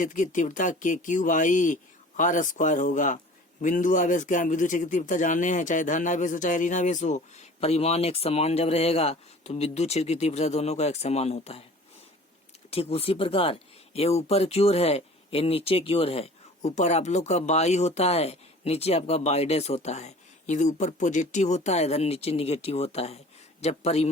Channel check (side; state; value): both; normal; correlation 0.45